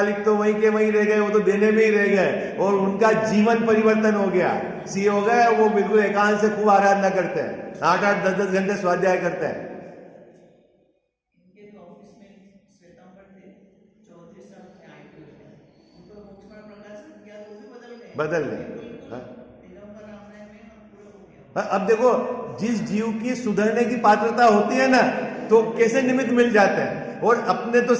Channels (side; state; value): both; identical; correlation 1.00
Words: तो वहीं के वहीं रह गए, वो तो देने में ही रह गए, और उनका जीवन परिवर्तन हो गया, सी हो गए। वो बिल्कुल एकांत से खूब आराधना करते हैं, 8-8, 10-10 घंटे स्वाध्याय करते हैं। बदल गए। अब देखो, जिस जीव की सुधरने की पात्रता होती है ना, तो कैसे निमित्त मिल जाते हैं। और अपने तो